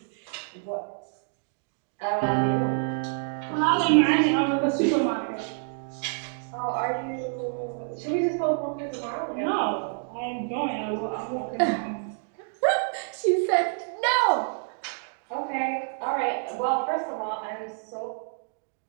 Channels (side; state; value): left; silent; digital silence